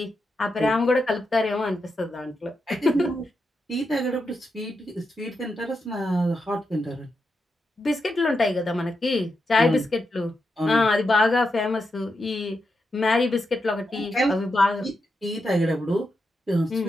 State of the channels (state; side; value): normal; both; correlation 0.85